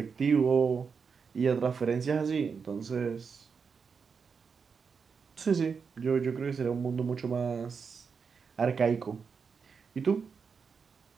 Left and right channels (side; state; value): left; quieter; 5.7 dB